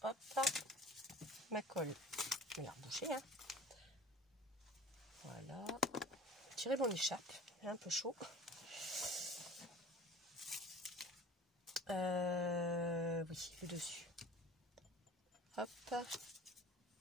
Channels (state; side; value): normal; both; correlation 0.43